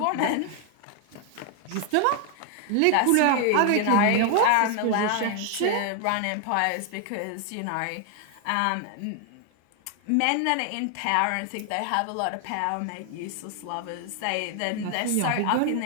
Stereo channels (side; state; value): both; different; correlation 0.00